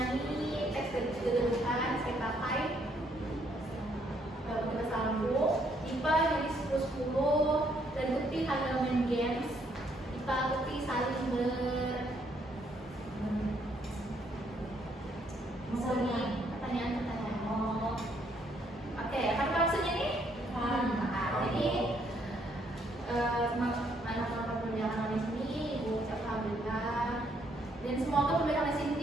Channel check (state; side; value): normal; both; correlation 0.70